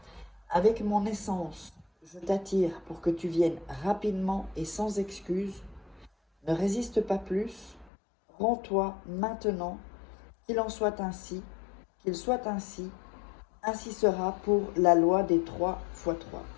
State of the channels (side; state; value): right; drops out; at 7.9 s